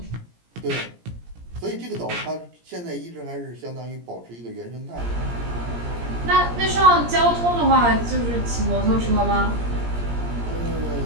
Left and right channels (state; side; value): late; left; 17 ms